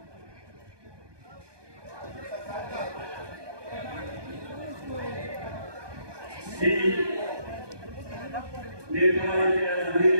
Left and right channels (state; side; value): late; left; 1.2 ms